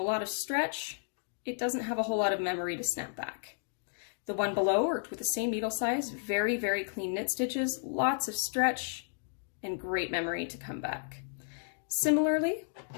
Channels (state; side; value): silent; right; digital silence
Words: lot of stretch, it doesn't have a whole lot of memory to snap back. The one below worked with the same needle size, very, very clean knit stitches, lots of stretch, and great memory to come back. Similarly,